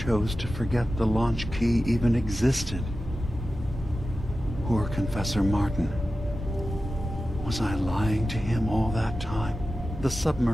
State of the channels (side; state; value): both; normal; correlation 0.93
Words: to forget the launch key even existed. Poor Confessor Martin. Was I lying to him all that time? The